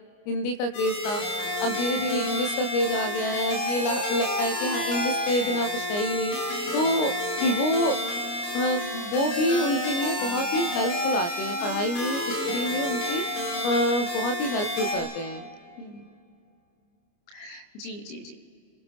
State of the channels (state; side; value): late; right; 29 ms